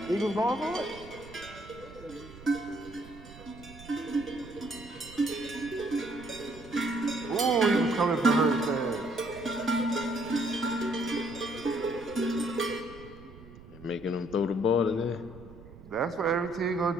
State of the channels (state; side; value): noise; right; rumble, 18 dB below the sound